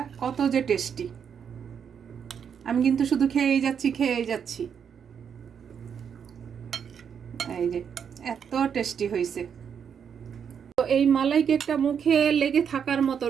কত যে টেস্টি। আমি কিন্তু শুধু খেয়েই যাচ্ছি। এই যে এত টেস্টি হয়েছে। তো এই মালাই কেকটা মুখে লেগে থাকার মতো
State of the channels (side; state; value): left; quieter; 7.5 dB